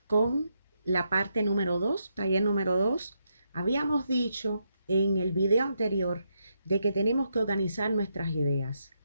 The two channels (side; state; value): both; inverted; correlation -0.81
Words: con la parte número 2, taller número 2. Habíamos dicho en el video anterior de que tenemos que organizar nuestras ideas.